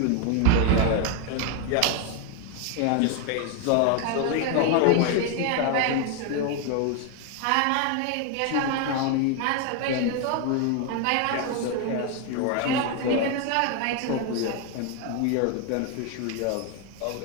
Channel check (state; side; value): different; both; correlation 0.01